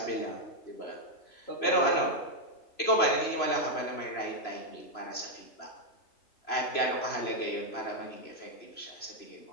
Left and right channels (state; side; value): late; right; 3.0 ms